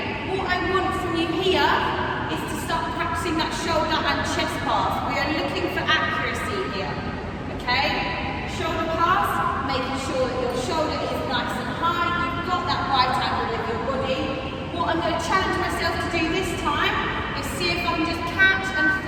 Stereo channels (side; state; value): both; identical; correlation 1.00